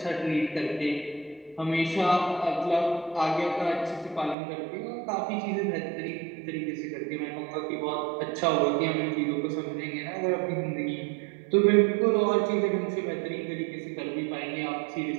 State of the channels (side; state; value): left; drops out; at 4.4 s